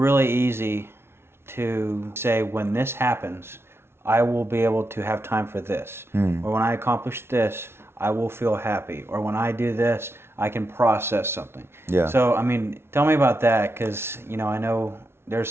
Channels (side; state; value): left; late; 0.12 ms